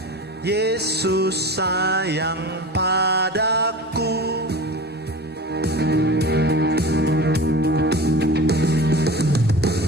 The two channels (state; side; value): normal; both; correlation 0.34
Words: Yesus sayang padaku.